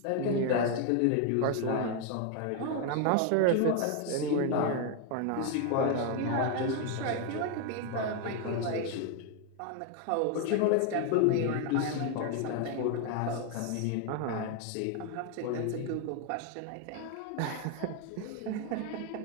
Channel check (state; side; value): different; both; correlation 0.01